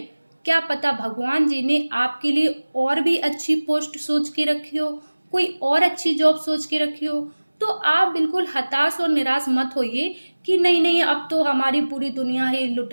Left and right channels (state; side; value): inverted; both; correlation -1.00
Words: क्या पता भगवान जी ने आपके लिए और भी अच्छी पोस्ट सोच के रखी हो, कोई और अच्छी जॉब सोच के रखी हो। तो आप बिल्कुल हताश और निराश मत होइए कि नहीं अब तो हमारी पूरी दुनिया ही लुट